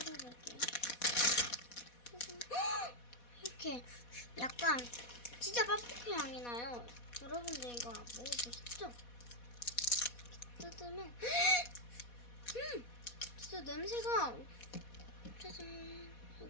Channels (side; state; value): right; late; 4.1 ms